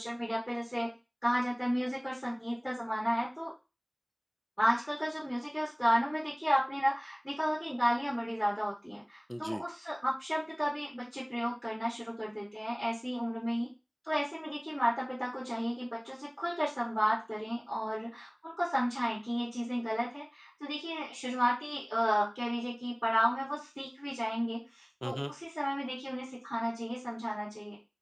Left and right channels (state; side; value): identical; both; correlation 1.00